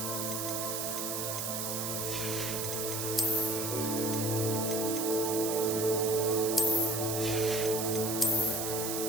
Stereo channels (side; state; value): right; noise; hiss, 2 dB below the sound